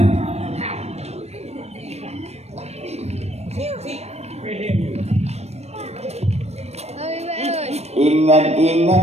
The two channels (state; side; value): late; left; 0.31 ms